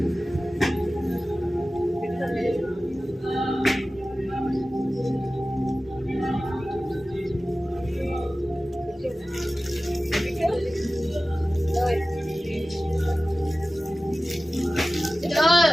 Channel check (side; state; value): both; normal; correlation 0.96